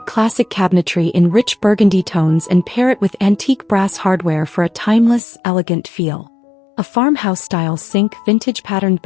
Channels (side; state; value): right; drops out; at 5.2 s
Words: classic cabinetry in rich burgundy tones and pair it with antique brass hardware for a timeless, elegant feel. A farmhouse-style sink, vintage patterned